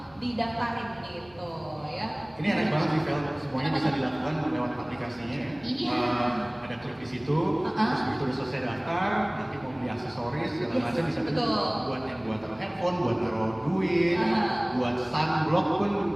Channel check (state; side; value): noise; left; hum, 26 dB below the sound